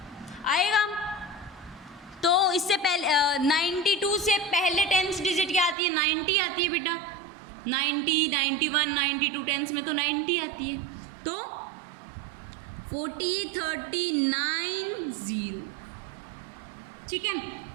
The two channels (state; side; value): drops out; left; at 5.8 s